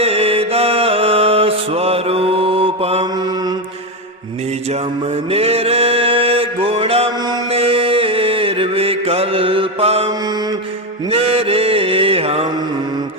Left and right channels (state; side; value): normal; both; correlation 0.11